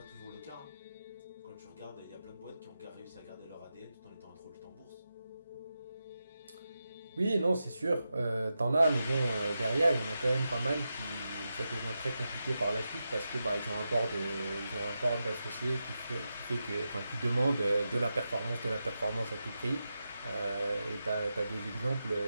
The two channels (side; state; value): both; inverted; correlation -0.89